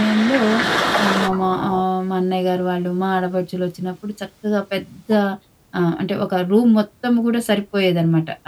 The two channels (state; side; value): identical; both; correlation 1.00